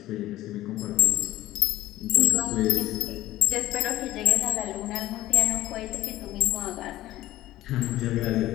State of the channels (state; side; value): quieter; right; 15.4 dB